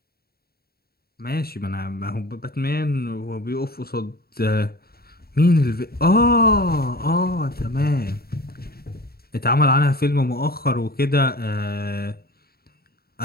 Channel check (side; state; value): right; late; 0.45 ms